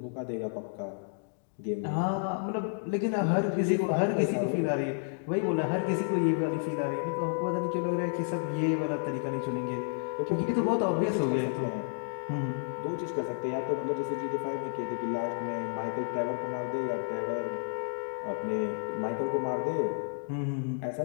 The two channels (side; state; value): right; silent; digital silence